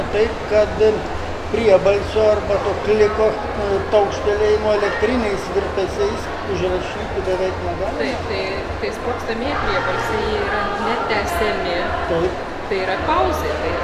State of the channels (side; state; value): both; identical; correlation 1.00